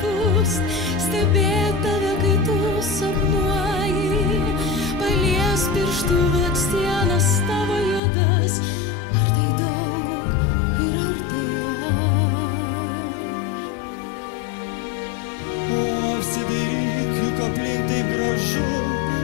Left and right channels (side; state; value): right; drops out; at 8.0 s